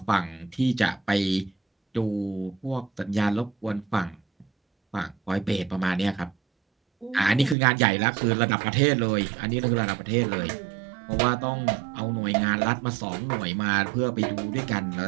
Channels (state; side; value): drops out; left; at 7.6 s